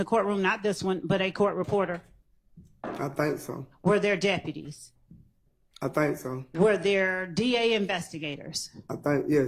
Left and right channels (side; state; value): both; identical; correlation 1.00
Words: courtroom? Not this one, but a court reporter? I think so. Were there deputies? I think so. Were there DA investigators? I think,